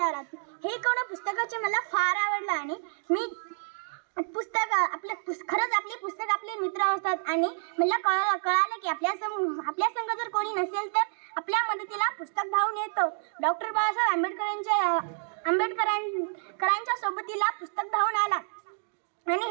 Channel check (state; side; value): silent; left; digital silence